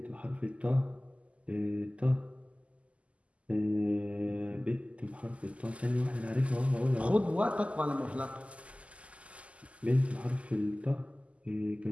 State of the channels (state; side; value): late; left; 0.062 ms